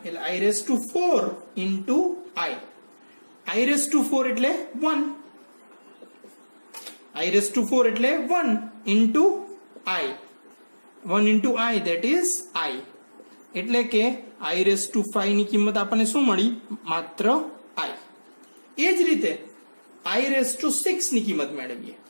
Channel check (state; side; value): inverted; both; correlation -1.00